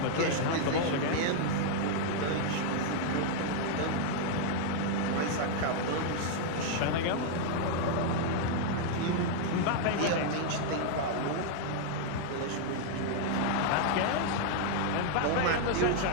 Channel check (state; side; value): different; both; correlation 0.00